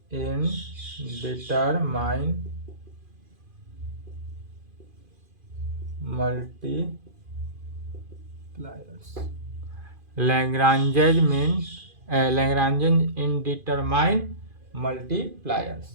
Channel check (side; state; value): left; late; 2.5 ms